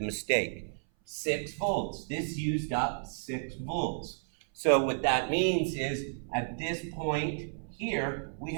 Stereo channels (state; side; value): silent; left; 56 dB below the other